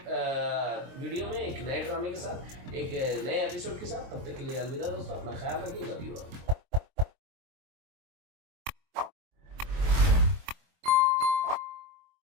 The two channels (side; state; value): left; late; 23 ms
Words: वीडियो में एक नए ड्रामे के साथ, एक नए एपिसोड के साथ। तब तक के लिए अलविदा दोस्तों, अपना ख्याल रखिए, लव यू ऑल।